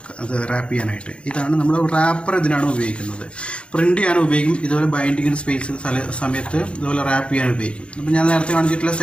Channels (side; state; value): right; late; 0.058 ms